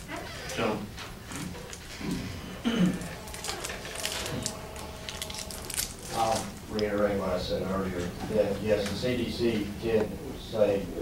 Gentlemen. I'll reiterate what I said earlier, that yes, the CDC did say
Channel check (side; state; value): both; identical; correlation 1.00